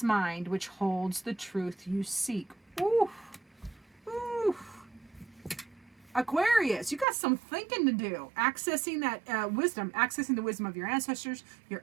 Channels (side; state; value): left; drops out; at 7.1 s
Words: mind, which holds the truth you seek. Ooh, ooh. Aquarius, you got some thinking to do. Accessing that wisdom, accessing the wisdom of your ancestors, your